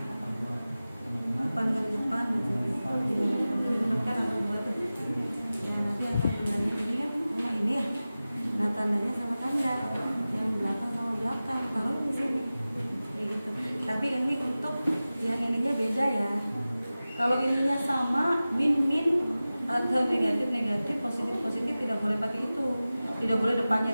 depan kali depan kan ada 2 tuh. Ya nanti akan bilangnya ini kan sama ini ya. Nah tandanya sama tanda, yang belakang sama belakang. Kalau di sini kayak gitu. Tapi ini untuk yang ininya beda ya. Kalau ininya sama, min atau negatif, positif tidak boleh pakai itu. Tidak boleh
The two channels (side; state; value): both; inverted; correlation -0.96